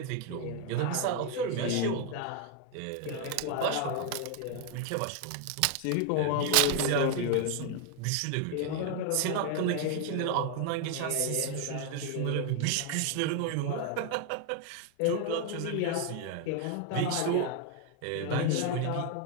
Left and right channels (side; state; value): both; different; correlation 0.01